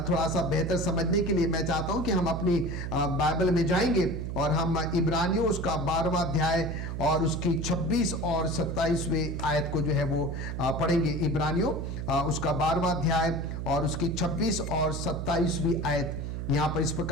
थोड़ा सा बेहतर समझने के लिए मैं चाहता हूं कि हम अपनी बाइबल में जाएंगे और हम इब्रानियों उसका 12वां अध्याय और उसकी 26 और 27वें आयत को जो है वो पढ़ेंगे। इब्रानियों उसका 12वां अध्याय और उसकी 26 और 27वीं आयत यहां पर इस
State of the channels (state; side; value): noise; right; hum, 5 dB below the sound